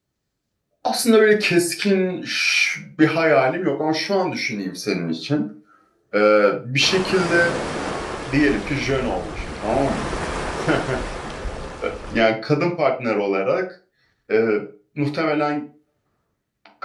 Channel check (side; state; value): both; identical; correlation 1.00